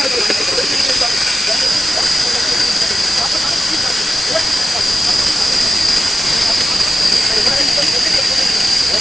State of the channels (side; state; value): both; normal; correlation 0.91